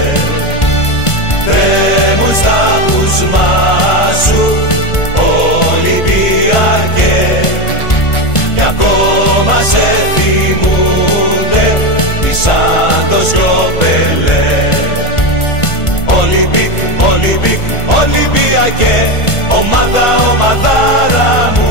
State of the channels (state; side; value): late; right; 1.5 ms